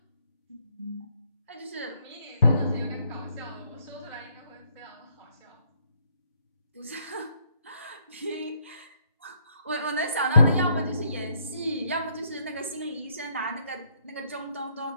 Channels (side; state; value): both; inverted; correlation -0.70